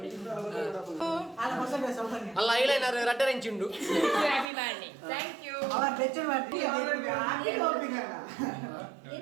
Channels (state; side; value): drops out; left; at 4.5 s